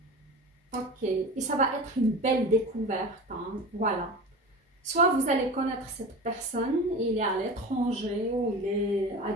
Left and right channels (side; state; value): both; normal; correlation 0.32